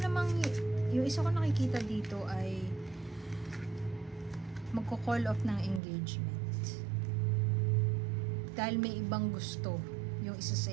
namang yung isa ko nakikita dito ay magko-call off ng engagement dahil may ibang gusto yung isa sa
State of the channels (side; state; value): left; drops out; at 5.8 s